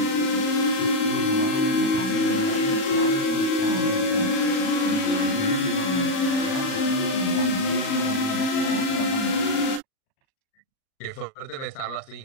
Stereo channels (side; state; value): right; late; 37 ms